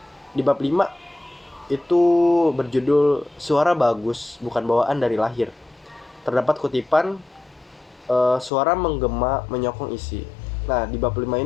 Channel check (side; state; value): right; drops out; at 8.5 s